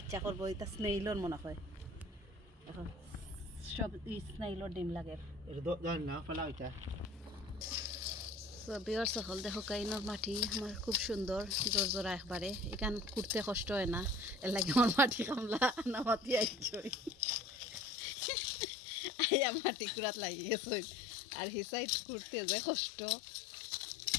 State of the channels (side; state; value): right; drops out; at 17.9 s